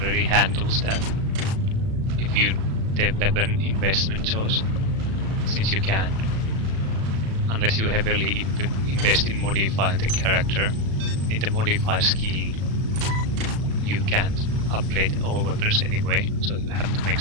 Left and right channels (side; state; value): left; late; 36 ms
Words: handles that. If you the weapon investment choice, since you can't, unless you heavily invest in modifying the character, in the modify skill, you can't upgrade all weapons anyway, so you have to make